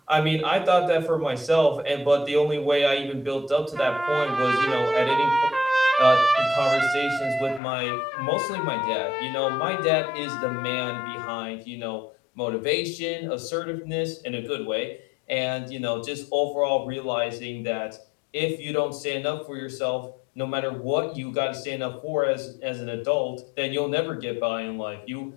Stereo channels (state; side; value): drops out; right; at 7.6 s